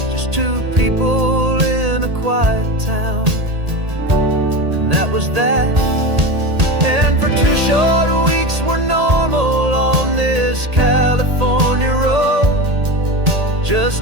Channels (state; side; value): late; left; 1.8 ms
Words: just 2 people in a quiet town, and that was that. And for 2 short weeks we're normal on this California road,